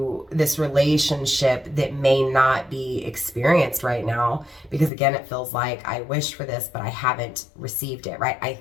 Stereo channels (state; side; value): drops out; right; at 4.9 s